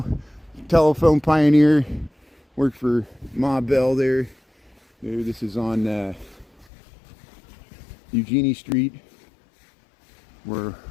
telephone pioneer. Worked for Ma Bell there. This is on Eugenie Street. We're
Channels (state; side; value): drops out; right; at 6.7 s